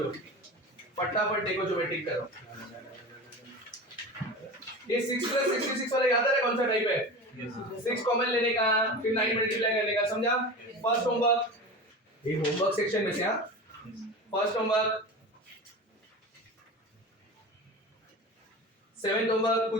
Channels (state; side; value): normal; both; correlation 0.30